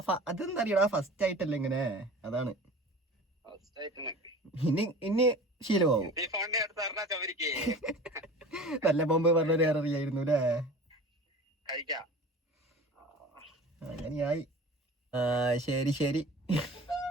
അതെന്താ അറിയടാ, ഫസ്റ്റ് ആയിട്ടല്ലേ ഇങ്ങനെ, അതാണ്. ഇനി ശീലമാവും. നല്ല ബോംബ് പറഞ്ഞൊരു അറിയായിരുന്നു അല്ലേ? അങ്ങനെയായി. ശരി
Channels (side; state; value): both; normal; correlation 0.40